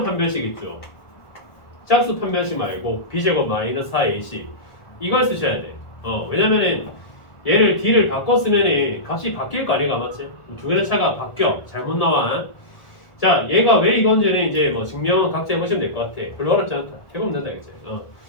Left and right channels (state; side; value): late; right; 1.4 ms